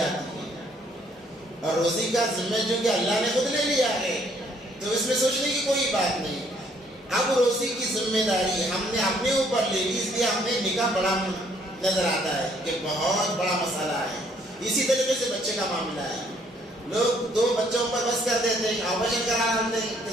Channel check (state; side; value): normal; both; correlation 0.65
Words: ہے، اور روزی کا ذمہ چونکہ اللہ نے خود لے لیا ہے تو اس میں سوچنے کی کوئی بات نہیں۔ اب روزی کی ذمہ داری ہم نے اپنے اوپر لے لی، اس لیے ہمیں نکاح بڑا نظر آتا ہے کہ بہت بڑا مسئلہ ہے۔ اسی طریقے سے بچے کا معاملہ ہے، لوگ 2 بچوں پر بس کر دیتے ہیں، آپریشن کرا لیتے ہیں